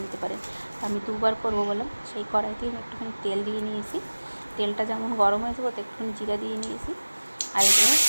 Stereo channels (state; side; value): inverted; both; correlation -1.00